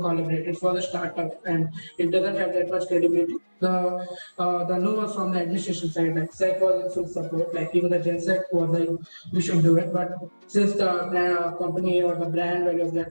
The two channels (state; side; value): inverted; both; correlation -1.00